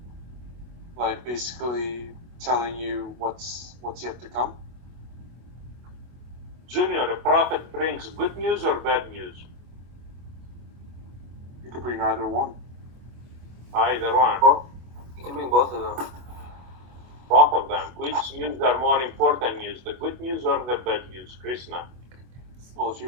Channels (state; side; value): late; left; 25 ms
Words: Like basically telling you what's yet to come. Junior, a prophet brings good news or bad news? You could bring either one. Either one. You can bring both of them. Both of them. Which news are more important news, the good news or the bad news, Krishna? Well, if